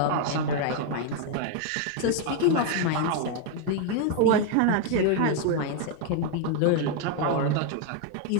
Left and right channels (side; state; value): both; different; correlation 0.01